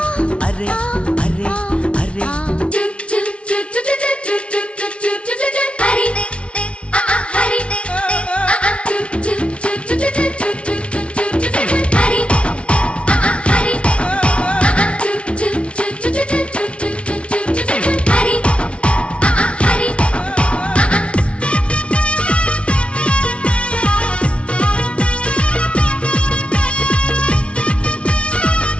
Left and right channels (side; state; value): right; late; 0.060 ms